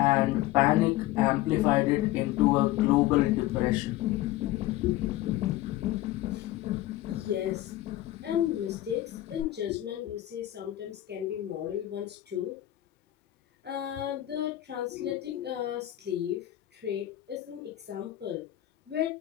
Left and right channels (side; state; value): right; quieter; 15.2 dB